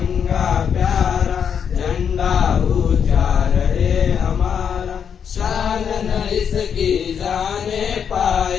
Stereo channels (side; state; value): right; quieter; 7.5 dB